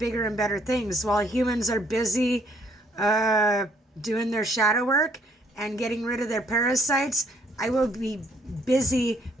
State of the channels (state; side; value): normal; both; correlation 0.65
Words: and better things while humans are busy doing their shadow work and getting rid of their parasites. I will be busy